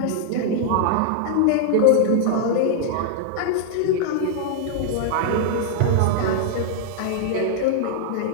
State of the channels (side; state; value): both; different; correlation -0.01